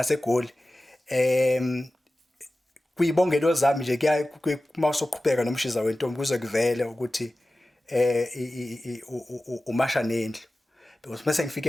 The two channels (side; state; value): both; normal; correlation 0.96